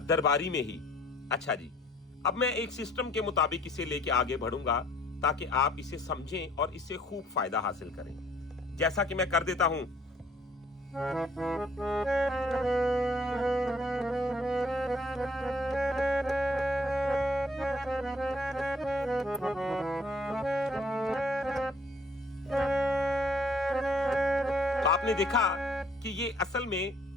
दरबारी में ही। अच्छा जी, अब मैं एक सिस्टम के मुताबिक इसे लेके आगे बढ़ूंगा ताकि आप इसे समझें और इससे खूब फायदा हासिल करें। जैसा कि मैं कर देता हूं, तो आपने देखा कि ये असल में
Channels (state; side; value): normal; both; correlation 0.60